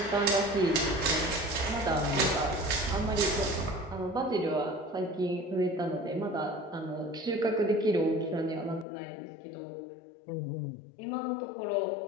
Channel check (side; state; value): right; drops out; at 8.8 s